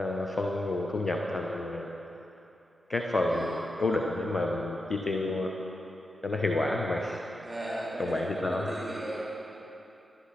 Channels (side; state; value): both; normal; correlation 0.87